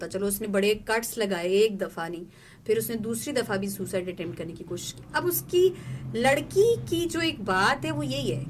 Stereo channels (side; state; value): both; identical; correlation 1.00